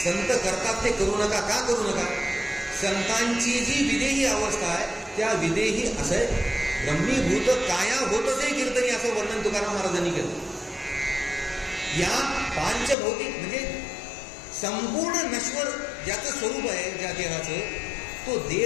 करतात ते करू नका. का करू नका? संतांची जी विदेही अवस्था आहे त्या विदेही असं आहे, ब्रह्मीभूत काया होतच कीर्तनी असं वर्णन तुकाराम महाराजांनी केलं. या पांचभौतिक म्हणजे संपूर्ण नश्वर ज्याचं स्वरूप आहे ज्या देहाचं, तो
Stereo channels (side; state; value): right; drops out; at 13.0 s